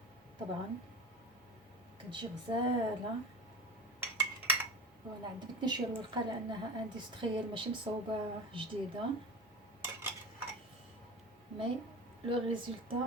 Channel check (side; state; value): both; normal; correlation 0.31